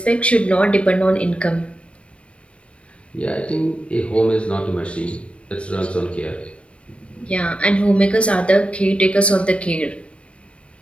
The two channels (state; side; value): late; right; 0.060 ms